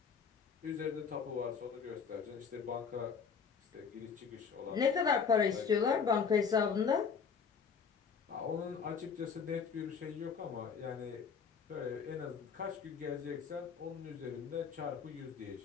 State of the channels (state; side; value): quieter; right; 6.1 dB